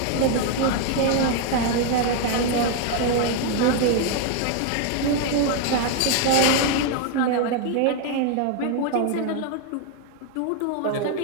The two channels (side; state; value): both; different; correlation 0.01